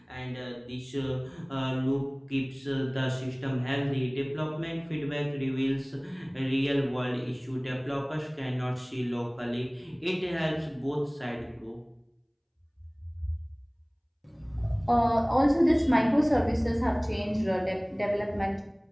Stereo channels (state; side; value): identical; both; correlation 1.00